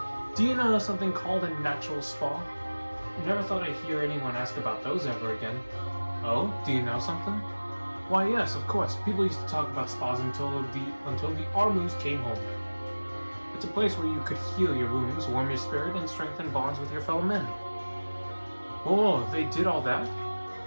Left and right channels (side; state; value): both; inverted; correlation -1.00